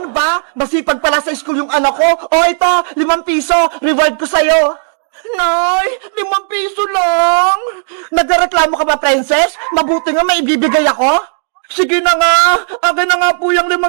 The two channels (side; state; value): left; silent; digital silence